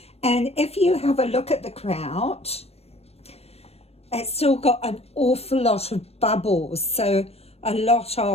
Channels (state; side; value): late; right; 0.29 ms